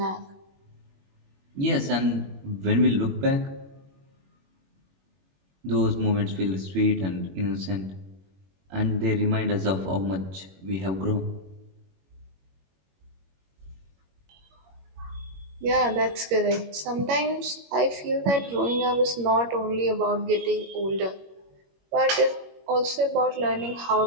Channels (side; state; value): left; late; 21 ms